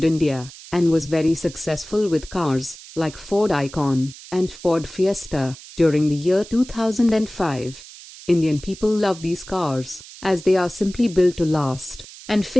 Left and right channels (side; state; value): right; noise; hiss, 17 dB below the sound